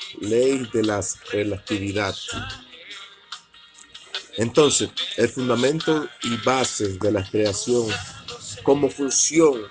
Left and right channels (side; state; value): both; identical; correlation 1.00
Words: ley de la relatividad. Entonces, el fundamento y base de la creación, como función